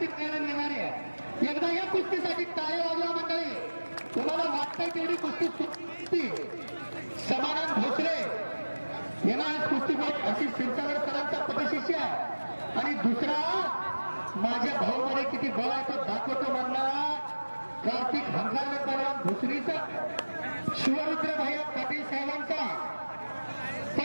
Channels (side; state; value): both; inverted; correlation -1.00